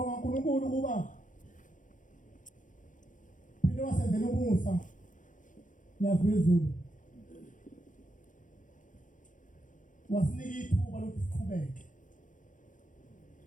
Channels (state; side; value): late; right; 0.37 ms